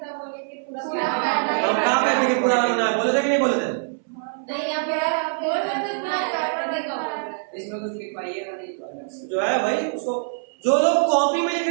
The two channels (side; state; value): left; silent; 63 dB below the other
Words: बोले कि पूरा हम कहाँ कहते हैं कि पूरा रंगना है, बोले थे कि नहीं बोले थे? नहीं, आप बोल रहे थे ना, इसमें कुछ लिखवाइएगा नहीं तो अलग से। जो है भाई उसको, जो लोग कॉपी में लिख